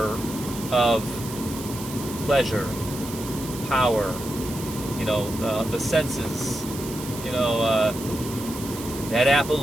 of pleasure, power, you know, the senses. You know, that apple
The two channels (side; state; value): right; noise; hiss, 12 dB below the sound